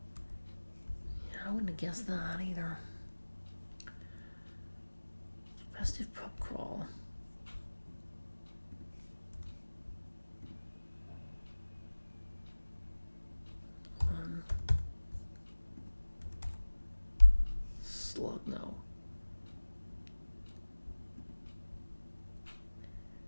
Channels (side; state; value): both; inverted; correlation -1.00